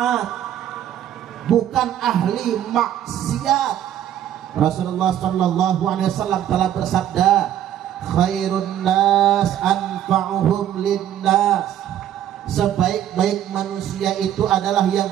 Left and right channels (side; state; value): left; quieter; 11.0 dB